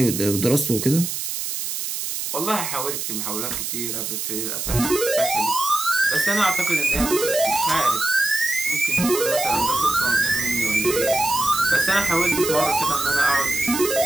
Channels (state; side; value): noise; right; hiss, 4 dB below the sound